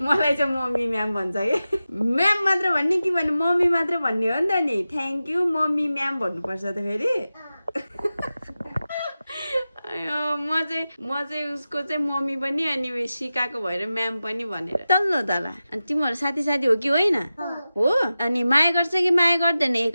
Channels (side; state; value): both; inverted; correlation -0.94